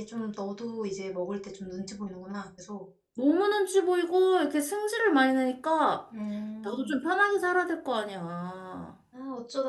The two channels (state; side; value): identical; both; correlation 1.00